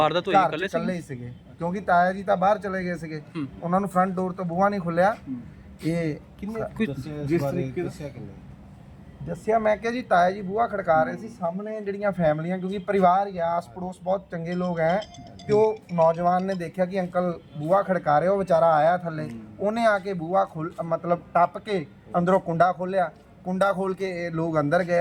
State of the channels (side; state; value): both; identical; correlation 1.00